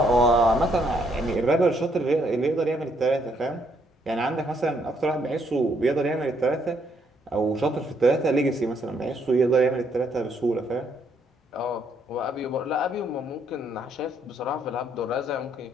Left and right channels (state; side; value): normal; both; correlation 0.71